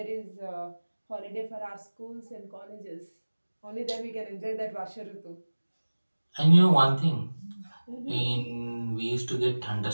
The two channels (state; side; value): inverted; both; correlation -1.00